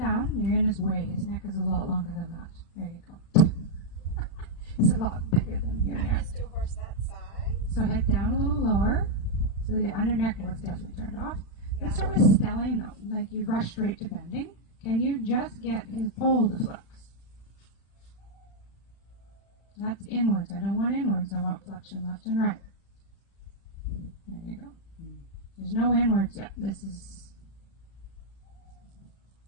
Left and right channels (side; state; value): right; late; 36 ms